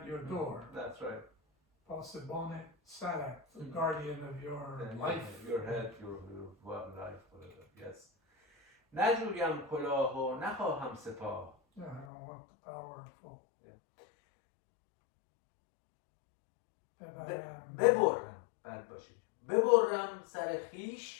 your door. That's right. Pasibone Sarat, the guardian of your life. Your head, your life, whatever. Yes. نجویم کلاه و نخواهم سپاه. Yeah, I don't want the powerful. ببرم، بد باشید. ببرم سر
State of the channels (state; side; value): drops out; right; at 12.1 s